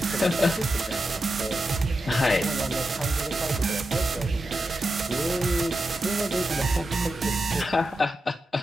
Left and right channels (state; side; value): normal; both; correlation 0.89